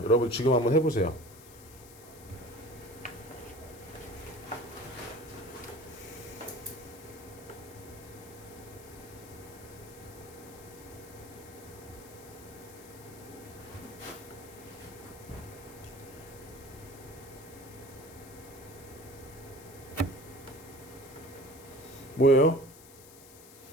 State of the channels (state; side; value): noise; left; hiss, 18 dB below the sound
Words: 여러분 지금 한번 해보세요. 뭐예요?